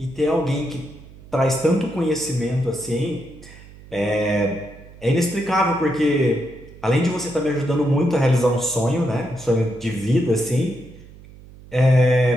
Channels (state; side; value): noise; right; hum, 20 dB below the sound